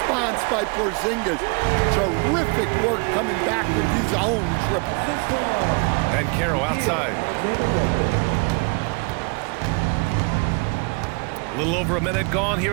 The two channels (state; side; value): quieter; left; 31.8 dB